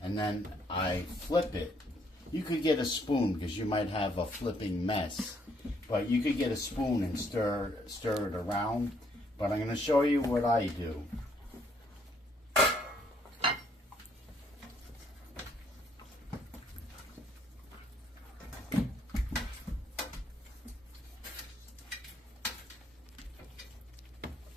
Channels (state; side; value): normal; both; correlation 0.68